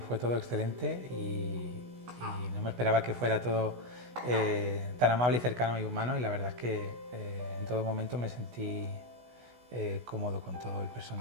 fue todo excelente y no me esperaba que fuera todo tan amable y cercano y humano, y la verdad es que en todo momento me sentí cómodo con todo el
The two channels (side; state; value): left; late; 16 ms